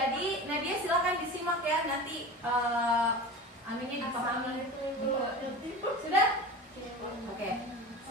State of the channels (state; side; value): normal; both; correlation 0.32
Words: Nadia silakan disimak ya, nanti aminnya dipahami. Sudah? Oke,